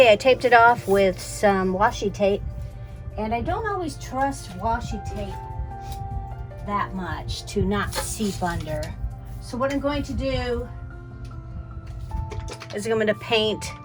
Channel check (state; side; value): identical; both; correlation 1.00